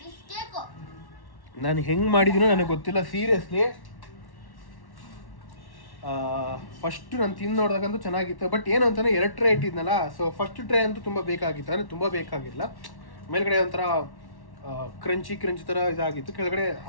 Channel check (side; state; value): right; late; 1.1 ms